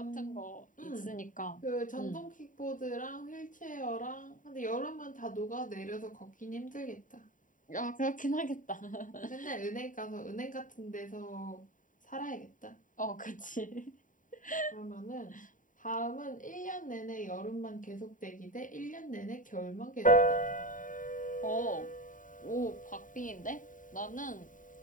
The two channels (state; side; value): late; right; 0.38 ms